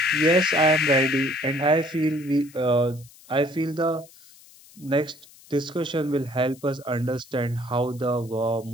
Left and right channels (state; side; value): noise; left; hiss, 24 dB below the sound